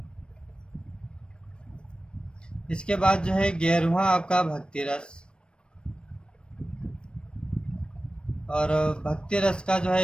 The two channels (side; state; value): right; late; 0.055 ms